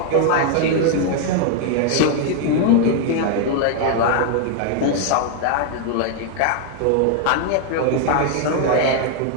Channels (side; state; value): both; different; correlation 0.00